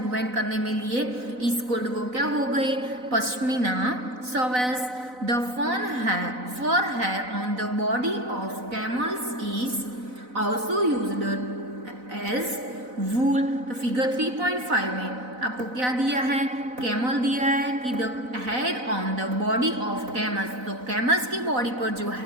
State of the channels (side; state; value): left; late; 4.0 ms